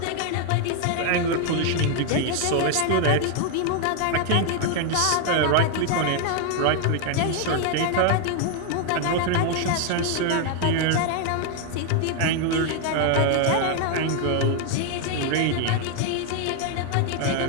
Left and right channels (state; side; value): different; both; correlation 0.00